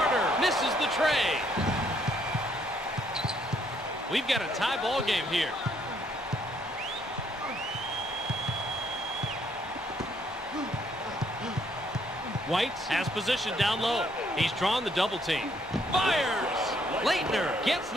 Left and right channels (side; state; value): both; normal; correlation 0.69